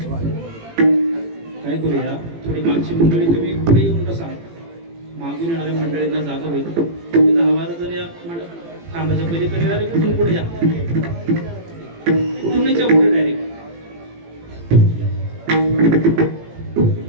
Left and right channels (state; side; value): late; left; 18 ms